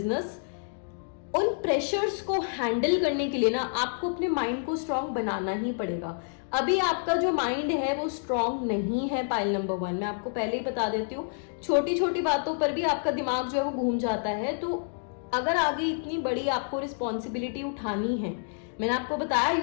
उन प्रेशर्स को हैंडल करने के लिए ना आपको अपने माइंड को स्ट्रांग बनाना ही पड़ेगा। अभी आपका जो माइंड है वो स्ट्रांग नहीं है। पाइल नंबर 1 मैं आपको पहले ही बता देती हूँ, छोटी छोटी बातों पर भी आपका दिमाग जो है वो घूम जाता है। तो अगर आगे इतनी बड़ी आपको रिस्पॉन्सिबिलिटी उठानी है, मैंने आपको बताया you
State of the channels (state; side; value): silent; right; digital silence